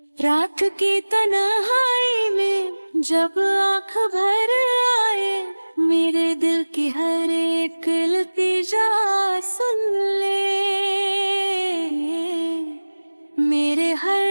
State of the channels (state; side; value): inverted; both; correlation -1.00